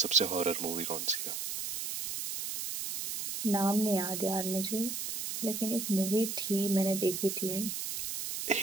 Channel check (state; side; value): noise; right; hiss, 4 dB below the sound